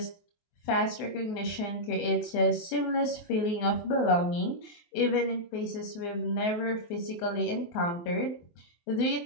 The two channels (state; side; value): late; right; 23 ms